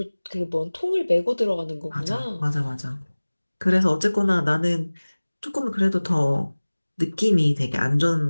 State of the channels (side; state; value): both; inverted; correlation -1.00